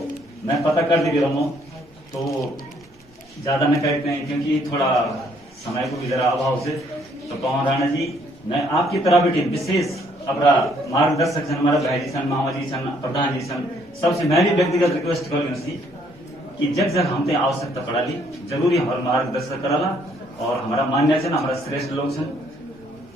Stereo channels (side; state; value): both; normal; correlation 0.66